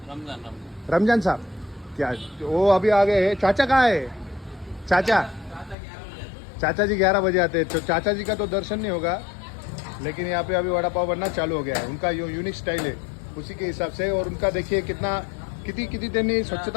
रमजान साहब. क्या वो अभी आ गए हैं. चाचा कहाँ है? चाचा जी 11 बजे आते हैं. तो चाचा जी का तो दर्शन नहीं होगा लेकिन यहाँ पे अभी वड़ा पाव बनना चालू हो गया है. उनका जो यूनिक स्टाइल है उसी के हिसाब से. और उनका देखिए किती त्यांनी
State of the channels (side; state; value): right; drops out; at 5.8 s